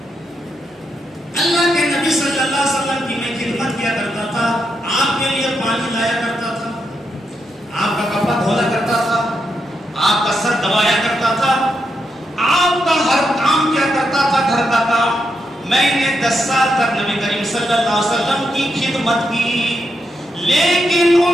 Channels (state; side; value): normal; both; correlation 0.83